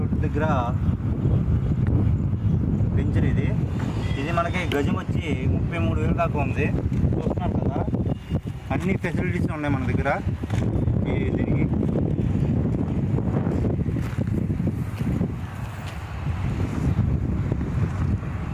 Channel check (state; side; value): identical; both; correlation 1.00